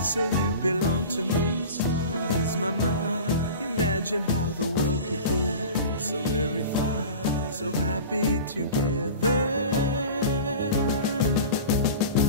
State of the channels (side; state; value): both; inverted; correlation -0.36